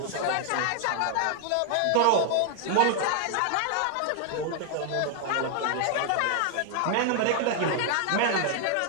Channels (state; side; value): different; both; correlation 0.00